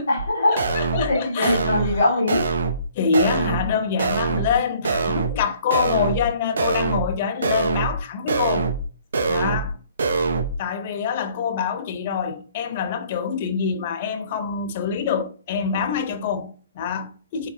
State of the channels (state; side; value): inverted; both; correlation -0.58